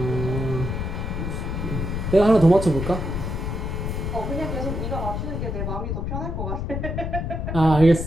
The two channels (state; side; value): noise; left; rumble, 3 dB below the sound